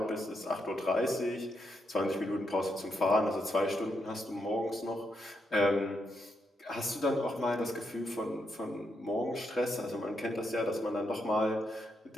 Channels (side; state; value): both; normal; correlation 0.81